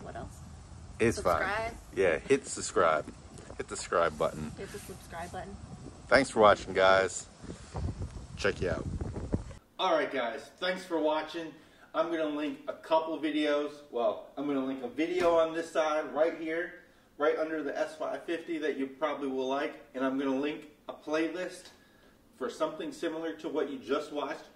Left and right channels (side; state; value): both; identical; correlation 1.00